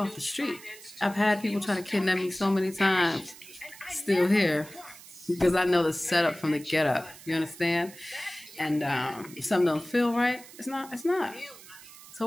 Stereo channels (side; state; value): right; noise; hiss, 18 dB below the sound